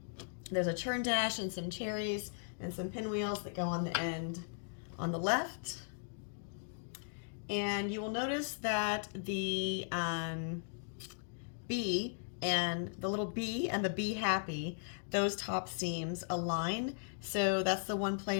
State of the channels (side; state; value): right; silent; digital silence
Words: There's a churn dash and some cherries and some pinwheels that go on the end on the left. And you will notice that the bee and the little bee and the Bee Happy, those top seams align. So that's the one